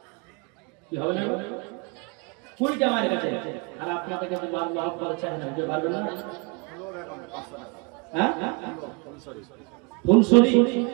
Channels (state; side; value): quieter; left; 31.3 dB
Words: কি হবে না 20 টাকা মারে গেছে আর আপনাদের কাছে মার মহব্বত চাই না যে ভালো না হ্যাঁ ফুলসরি ফুলসরি